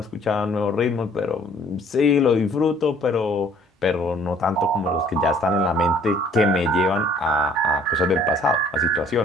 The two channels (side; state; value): both; normal; correlation 0.57